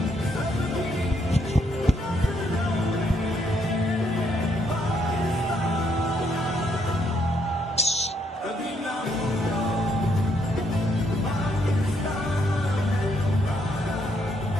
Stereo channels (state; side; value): normal; both; correlation 0.73